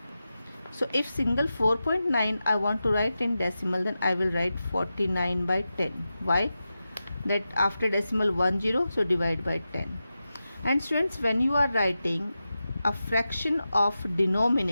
So if single 4.9 I want to write in decimal, then I will write 49 by 10. Why? That after decimal 1 0, so divide by 10. And students, when you are writing a fraction of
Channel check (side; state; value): both; inverted; correlation -0.92